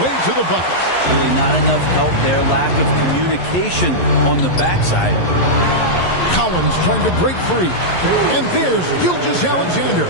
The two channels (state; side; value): late; right; 11 ms